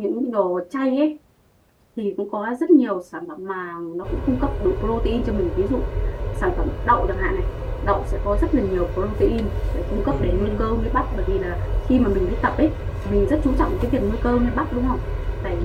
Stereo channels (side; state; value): both; identical; correlation 1.00